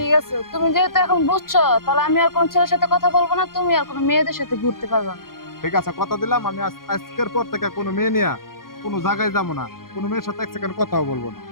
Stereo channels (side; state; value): right; late; 0.92 ms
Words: আছে, তুমি যেহেতু এখন বুঝছো, তাহলে আমি আর কোন ছেলের সাথে কথা বলবো না, তুমি আর কোনো মেয়েদের সাথে ঘুরতে পারবে না। ঠিক আছে, কথা দিলাম আমি আজকের পর থেকে কোনো মেয়ে নিয়ে কোনো জায়গায় যাবো না, কোনো মেয়ের সাথে এক সেকেন্ড কথাও বলবো না।